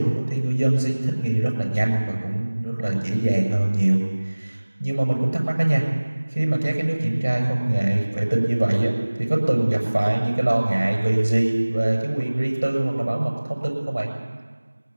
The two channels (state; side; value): inverted; both; correlation -1.00